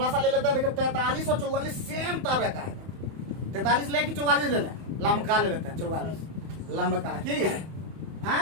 सा ले लेता है। देखो 43 और 44 सेम तरह का है। 43 ले कि 44 ले लें? लमका ले लेते हैं। 44 लमका ठीक है।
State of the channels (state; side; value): late; left; 31 ms